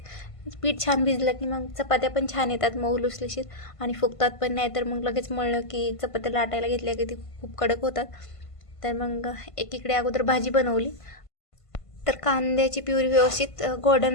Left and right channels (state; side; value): late; right; 1.5 ms